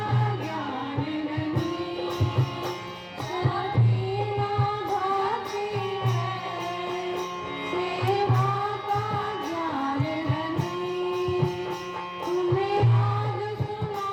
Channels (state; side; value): identical; both; correlation 1.00